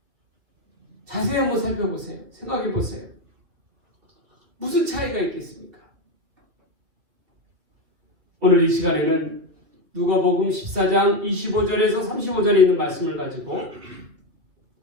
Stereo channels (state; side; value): late; left; 3.0 ms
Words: 자세히 한번 살펴보세요. 생각해 보세요. 무슨 차이가 있겠습니까? 오늘 이 시간에는 누가복음 14장 25절에서 35절에 있는 말씀을 가지고